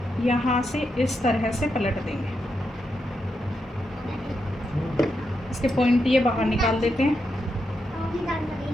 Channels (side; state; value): both; normal; correlation 0.84